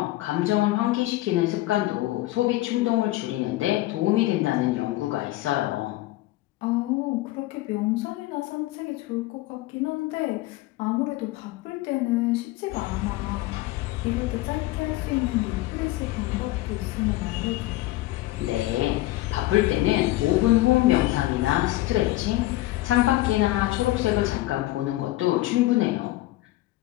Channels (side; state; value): right; quieter; 17.7 dB